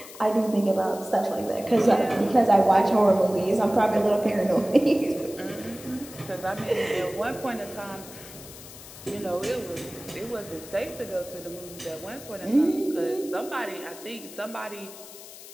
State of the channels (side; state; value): left; noise; hiss, 16 dB below the sound